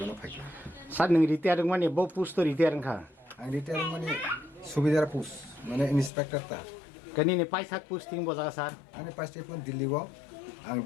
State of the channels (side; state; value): right; drops out; at 6.1 s